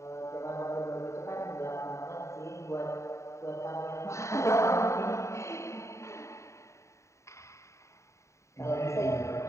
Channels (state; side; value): late; right; 0.14 ms